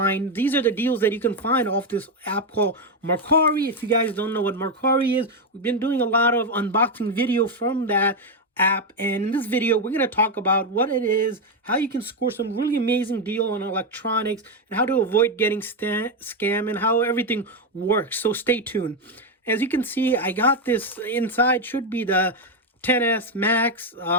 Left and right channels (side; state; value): both; normal; correlation 0.06